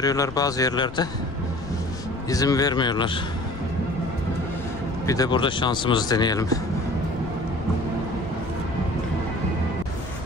bazı yerlerde izin vermiyorlar. Bir de burada şansımızı deneyelim.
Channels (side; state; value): left; noise; rumble, 13 dB below the sound